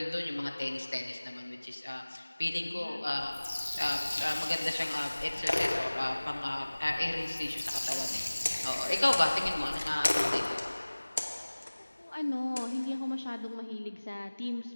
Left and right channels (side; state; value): both; inverted; correlation -1.00